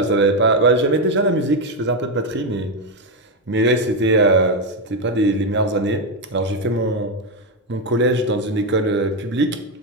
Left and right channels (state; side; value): normal; both; correlation 0.07